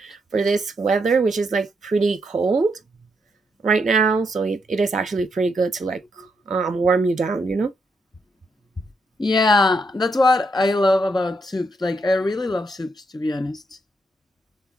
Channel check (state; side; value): normal; both; correlation 0.79